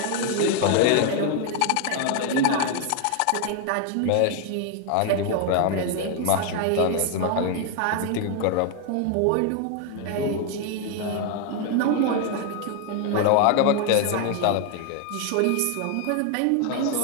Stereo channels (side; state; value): both; different; correlation 0.01